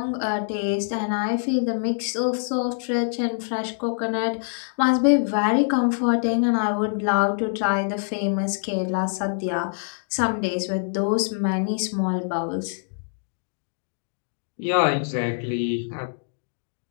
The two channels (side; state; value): right; silent; digital silence